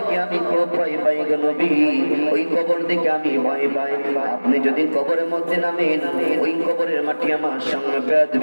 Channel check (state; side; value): inverted; both; correlation -1.00